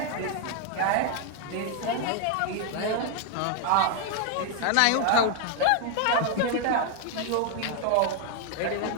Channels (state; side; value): different; both; correlation 0.00